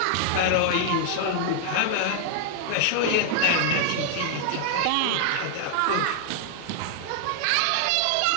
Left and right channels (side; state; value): both; different; correlation 0.00